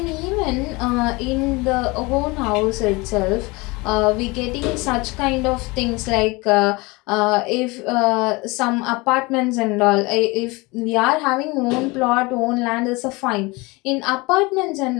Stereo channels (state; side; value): quieter; right; 24.6 dB